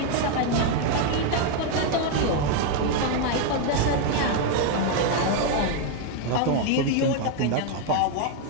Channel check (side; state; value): both; different; correlation 0.01